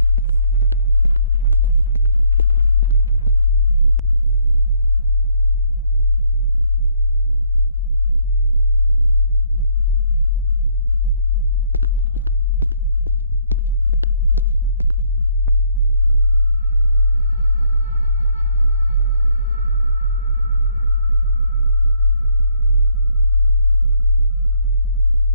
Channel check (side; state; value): both; inverted; correlation -0.67